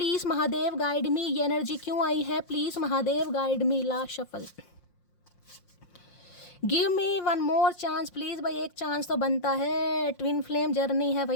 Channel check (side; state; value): right; late; 5.6 ms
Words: महादेव गाइड मी। ये एनर्जी क्यों आई है, please Mahadev guide me. Last shuffle. Give me one more chance please. भाई एक चांस तो बनता है, ट्विन फ्लेम जर्नी है